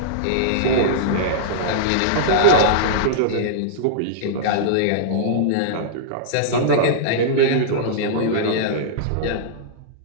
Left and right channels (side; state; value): both; different; correlation -0.03